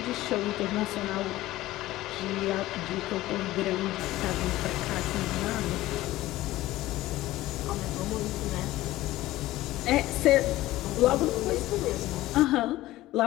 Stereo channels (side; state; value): right; quieter; 16.5 dB